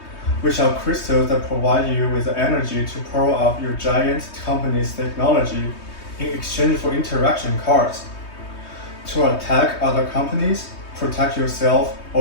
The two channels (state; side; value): late; right; 3.2 ms